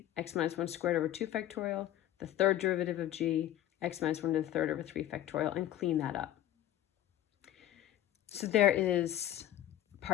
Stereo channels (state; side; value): quieter; right; 13.0 dB